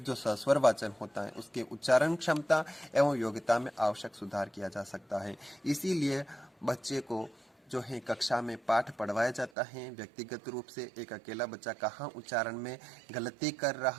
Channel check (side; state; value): left; drops out; at 9.5 s